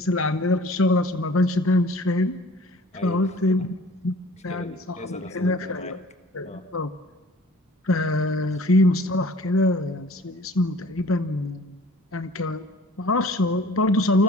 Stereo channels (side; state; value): both; normal; correlation 0.49